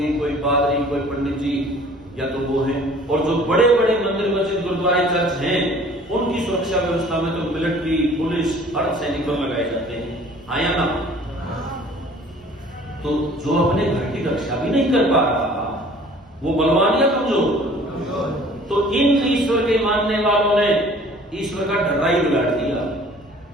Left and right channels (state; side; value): normal; both; correlation 0.51